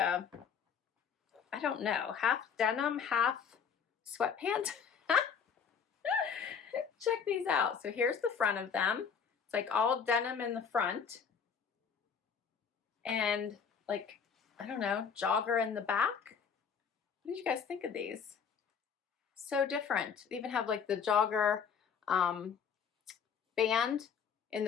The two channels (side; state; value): right; quieter; 6.7 dB